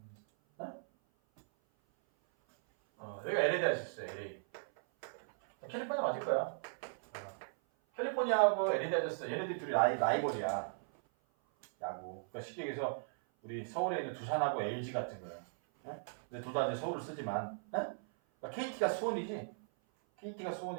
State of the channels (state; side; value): silent; left; 53 dB below the other